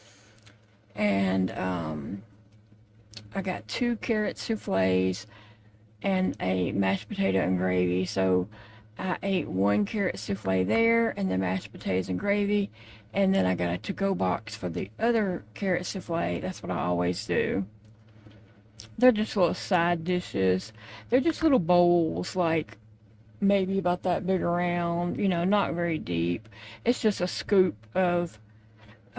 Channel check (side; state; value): both; identical; correlation 1.00